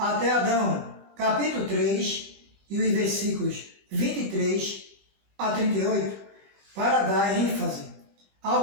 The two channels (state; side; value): late; left; 20 ms